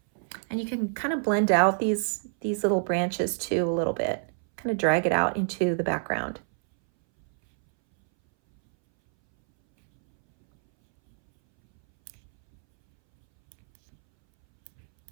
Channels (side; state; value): left; silent; 61 dB below the other